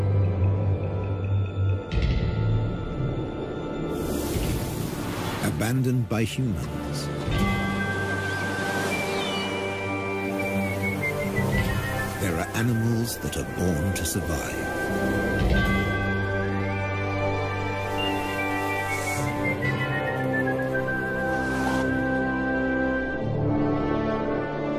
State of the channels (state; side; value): identical; both; correlation 1.00